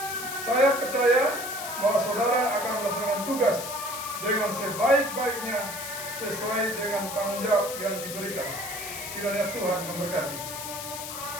Saya percaya bahwa saudara akan melaksanakan tugas dengan sebaik-baiknya sesuai dengan tanggung jawab yang diberikan. Kiranya Tuhan memberkati.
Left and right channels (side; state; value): left; noise; hiss, 8 dB below the sound